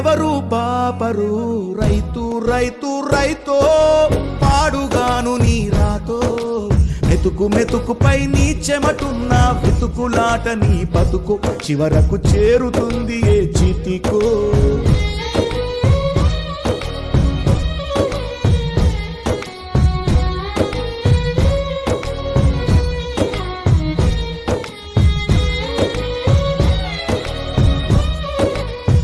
పాపరు. రైతు రైతు రైతో పాడుగాను నీ రాతో, మెతుకు మెతుకుపై నీ చెమటున్న వెతుకులాట నీ బతుకు చివరకు చేరుతుంది ఏ చితికో.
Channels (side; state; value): both; identical; correlation 1.00